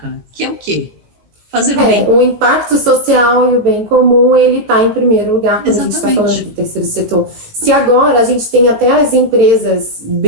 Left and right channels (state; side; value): late; left; 18 ms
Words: que é o quê? Fazer o bem. O impacto social e o bem comum, ele está em primeiro lugar quando a gente está falando do terceiro setor. Se agora a gente tem até as empresas